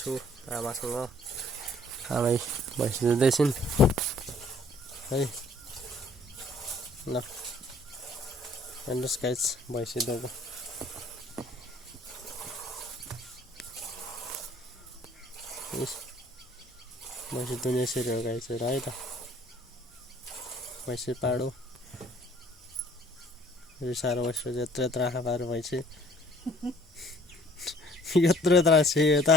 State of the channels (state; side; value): normal; both; correlation 0.56